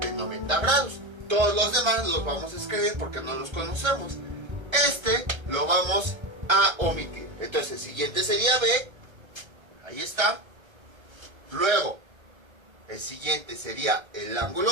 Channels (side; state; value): left; late; 1.3 ms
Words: de 90 grados. Todos los demás los vamos a escribir porque no los conocemos. Este lo vamos a omitir. Entonces el siguiente sería B. Ahí está. Luego el siguiente sería el ángulo